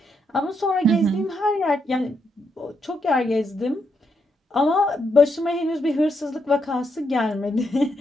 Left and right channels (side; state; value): both; normal; correlation 0.79